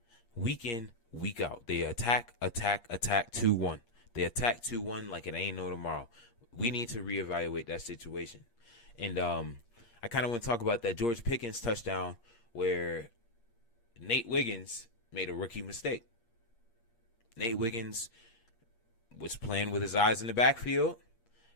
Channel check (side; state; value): right; late; 8.5 ms